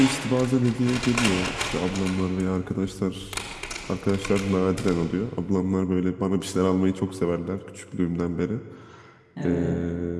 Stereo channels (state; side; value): identical; both; correlation 1.00